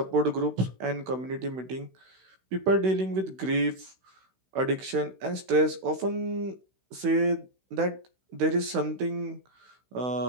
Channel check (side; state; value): left; late; 16 ms